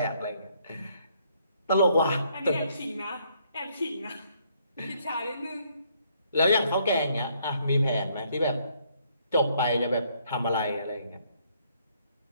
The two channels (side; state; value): both; inverted; correlation -0.68